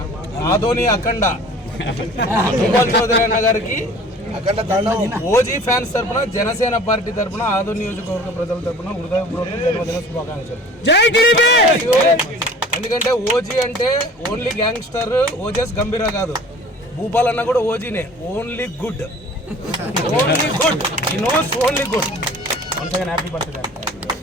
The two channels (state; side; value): normal; both; correlation 0.46